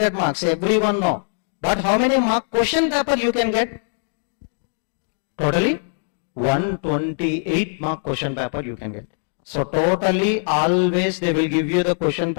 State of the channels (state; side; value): silent; right; 65 dB below the other